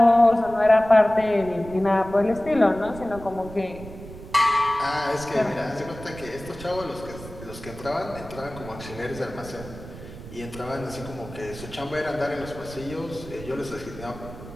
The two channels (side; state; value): right; noise; rumble, 14 dB below the sound